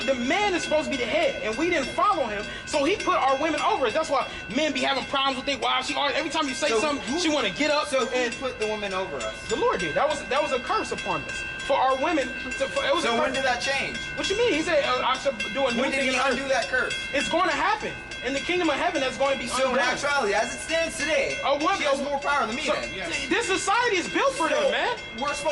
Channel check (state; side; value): identical; both; correlation 1.00